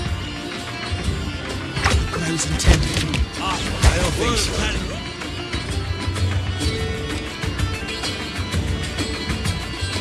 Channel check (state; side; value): identical; both; correlation 1.00